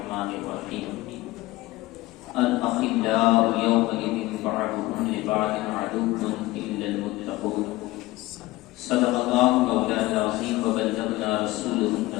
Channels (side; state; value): right; quieter; 18.9 dB